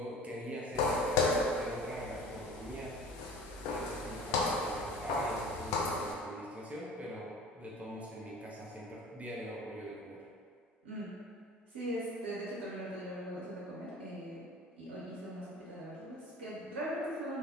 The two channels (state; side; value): normal; both; correlation 0.42